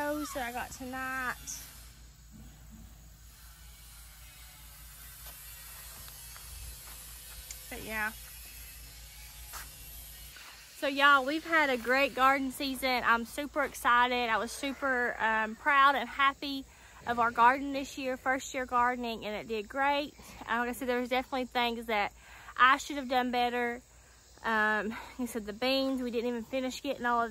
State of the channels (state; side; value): identical; both; correlation 1.00